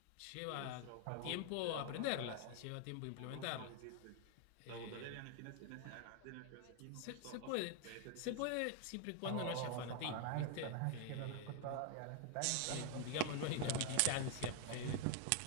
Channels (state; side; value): different; both; correlation 0.00